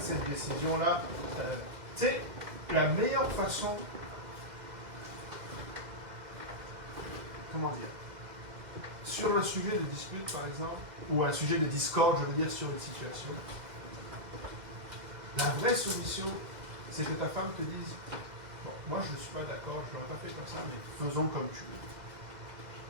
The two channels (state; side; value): late; left; 2.0 ms